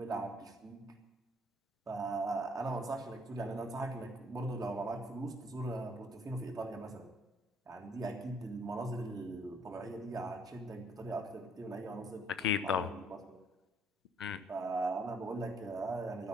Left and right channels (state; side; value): normal; both; correlation 0.65